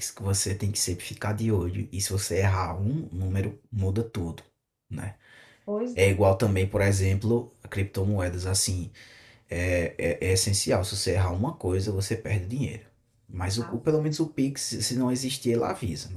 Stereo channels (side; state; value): both; identical; correlation 1.00